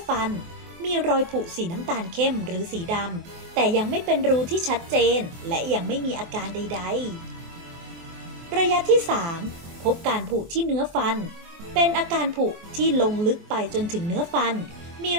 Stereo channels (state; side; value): late; left; 23 ms